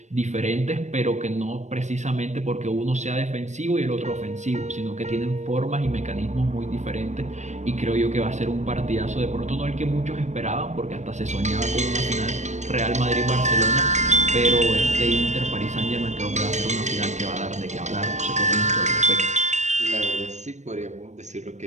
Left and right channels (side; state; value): left; late; 0.34 ms